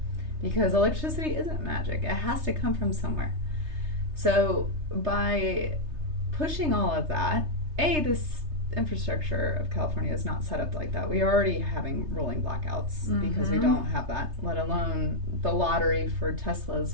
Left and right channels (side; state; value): left; late; 3.3 ms